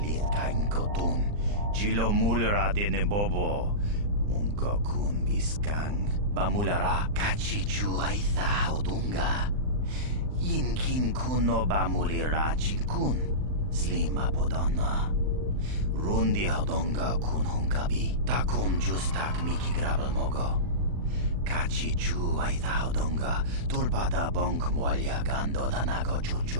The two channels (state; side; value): late; left; 39 ms